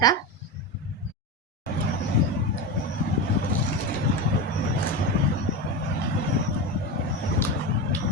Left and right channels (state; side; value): normal; both; correlation 0.19